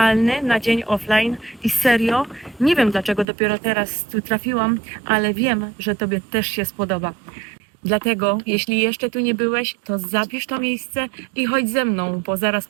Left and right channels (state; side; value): drops out; left; at 3.2 s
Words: na dzień offline i serio, nie wiem dlaczego dopiero teraz tu trafiłam, ale wiem, że Tobie też się spodoba. Dlatego, jeśli jeszcze tu nie byłeś, to zapisz to miejsce i chodź ze mną, bo zaraz